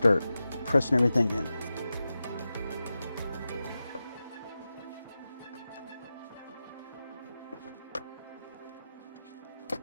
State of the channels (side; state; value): both; inverted; correlation -0.93